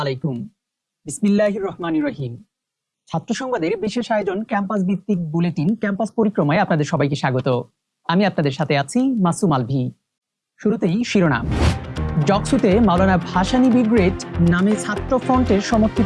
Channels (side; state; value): both; identical; correlation 1.00